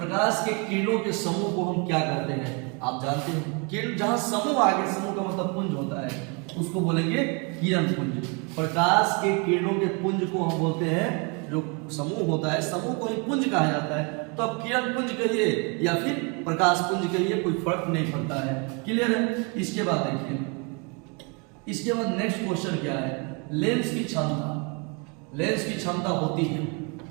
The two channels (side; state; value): left; quieter; 33.2 dB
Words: के किरणों के समूह को हम क्या कहते हैं, आप जानते हैं। किरण जहां समूह आगे, समूह का मतलब पुंज होता है, उसको बोलेंगे किरण पुंज। प्रकाश के किरणों के पुंज को हम बोलते हैं, जो समूह होता है समूह को ही पुंज कहा जाता है। तो अब किरण पुंज कहिए या फिर प्रकाश पुंज कहिए, कोई फर्क नहीं पड़ता है। क्लियर है। इसके बाद देखिए, इसके बाद नेक्स्ट क्वेश्चन क्या है, लेंस की क्षमता। लेंस की क्षमता होती है,